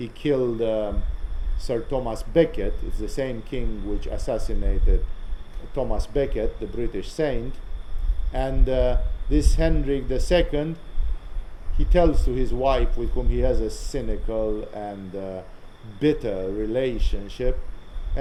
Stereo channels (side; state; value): both; identical; correlation 1.00